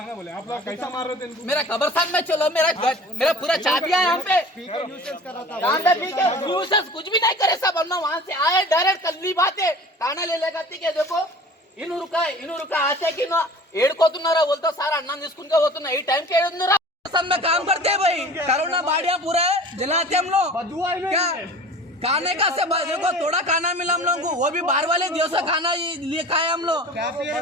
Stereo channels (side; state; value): both; normal; correlation 0.41